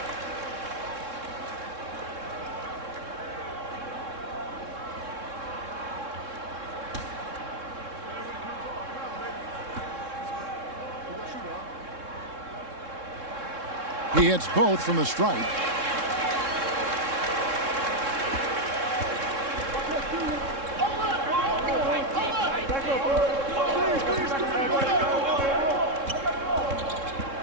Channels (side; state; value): left; late; 3.7 ms